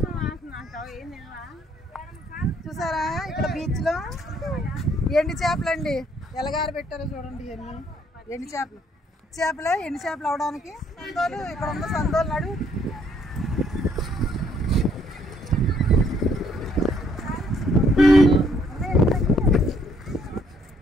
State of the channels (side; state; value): both; normal; correlation 0.67